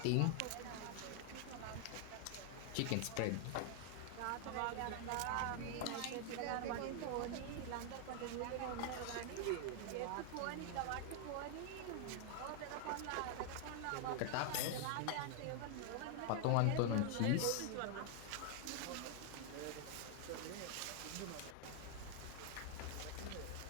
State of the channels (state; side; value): different; both; correlation 0.00